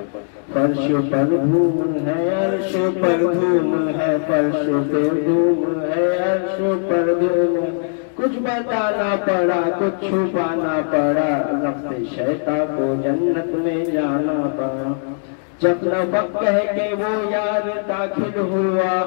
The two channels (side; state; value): right; silent; digital silence